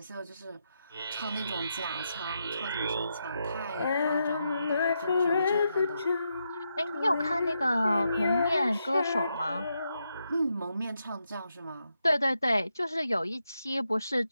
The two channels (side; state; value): both; inverted; correlation -0.83